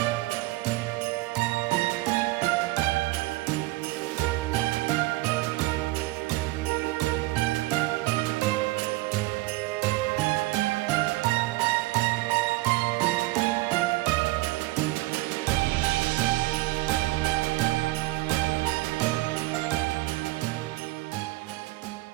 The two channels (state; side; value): quieter; left; 19.6 dB